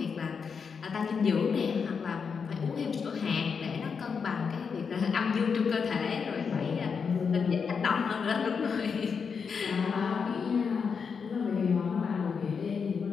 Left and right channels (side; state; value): right; quieter; 5.9 dB